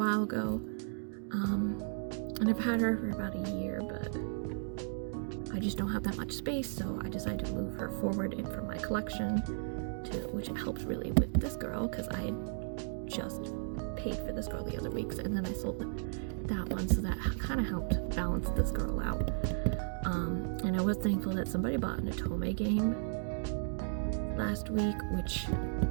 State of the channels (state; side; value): silent; left; digital silence